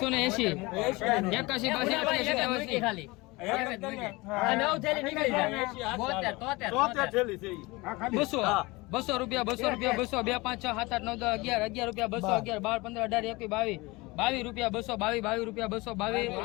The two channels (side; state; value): right; quieter; 23.3 dB